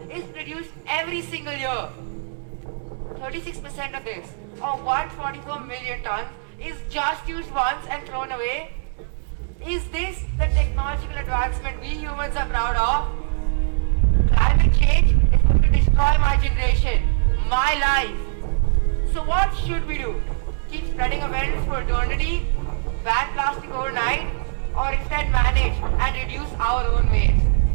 is produced every single year. 36% of this, or 144 million tons, is just used once and thrown away. Is this the technological advancement we humans are proud of? Climate change is going to destroy my generation, my life. So what should we do? Keep spreading awareness for eternity? Ban plastic overnight? Or instead manage and reduce our own waste?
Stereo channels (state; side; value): silent; left; digital silence